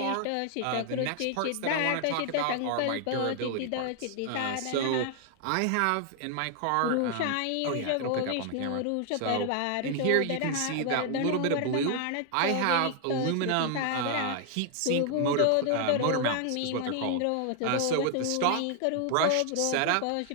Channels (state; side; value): different; both; correlation 0.00